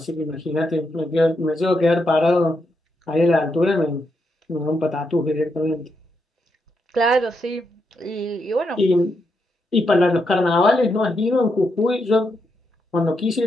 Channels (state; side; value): normal; both; correlation 0.82